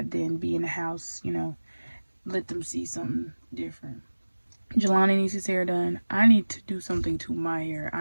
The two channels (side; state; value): both; inverted; correlation -1.00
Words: than be in the house, you know, let them see something different. Jelani needs his hair done. I need to do something to my hair.